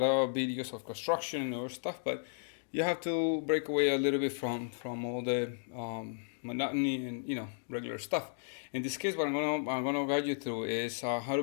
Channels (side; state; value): right; silent; digital silence